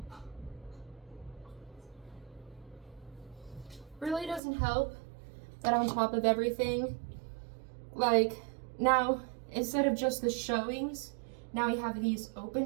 Really doesn't help that on top of everything, like, now, instead of just the showings, now we have these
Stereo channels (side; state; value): left; drops out; at 4.4 s